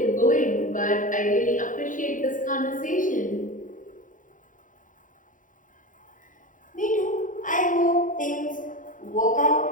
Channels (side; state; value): right; late; 0.38 ms